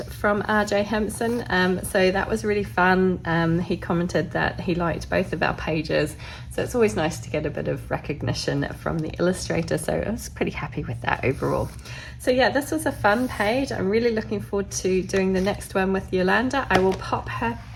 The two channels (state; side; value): identical; both; correlation 1.00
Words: from R.J. Hampson, so that was really fun. He commented that he liked both of our pages, so it's always nice to get a bit of recognition from the illustrator, so I was pretty happy with that overall. So yeah, this was a fun page. I'm really looking forward to doing the next one with Yolanda. I will pop her